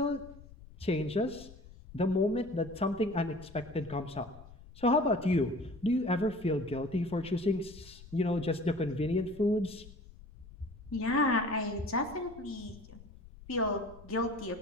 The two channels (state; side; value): noise; left; rumble, 19 dB below the sound